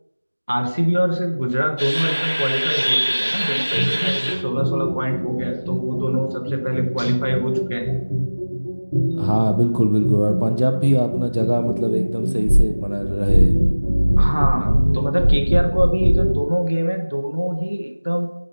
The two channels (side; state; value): both; inverted; correlation -1.00